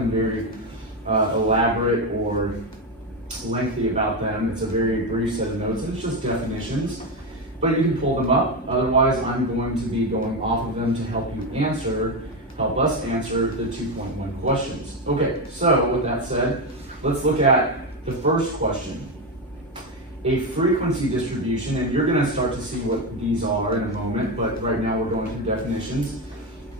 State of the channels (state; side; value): normal; both; correlation 0.12